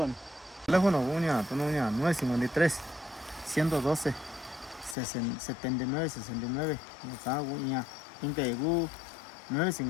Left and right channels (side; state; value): right; drops out; at 5.0 s